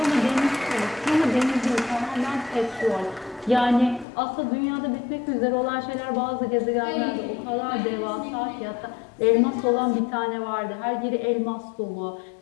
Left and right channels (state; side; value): drops out; right; at 4.0 s